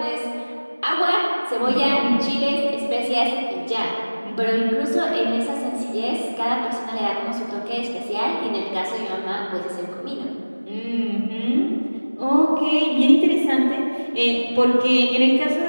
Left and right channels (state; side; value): inverted; both; correlation -1.00